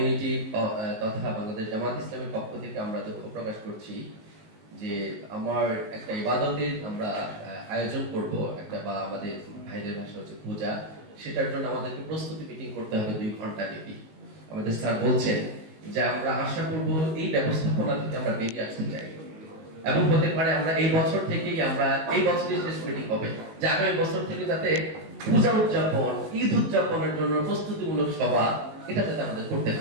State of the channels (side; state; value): left; late; 19 ms